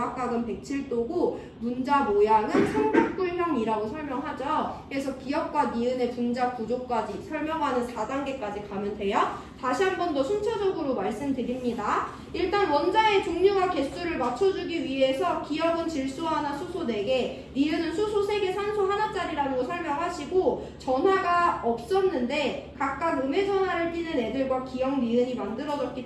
107도고 분자 모양은 삼각뿔형이라고 설명하죠. 그래서 기역과 니은의 분자 구조까지 설명하는 4단계까지 가면 돼요. 다시 한 번 더 순차적으로 말씀드립니다. 일단 원자의 종류와 개수를 맞춰주기 위해서 기역은 질소 하나, 수소 4개, 니은은 수소 3개, 산소 하나짜리라는 거 설명하시고 전하가 없었는데 각각 음의 전하를 띠는 애들과 기역, 니은이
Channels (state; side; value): identical; both; correlation 1.00